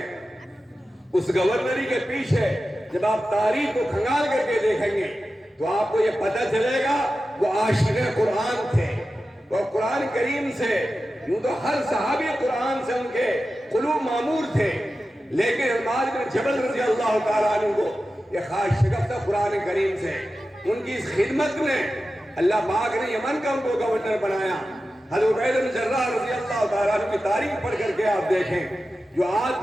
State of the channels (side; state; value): both; normal; correlation 0.93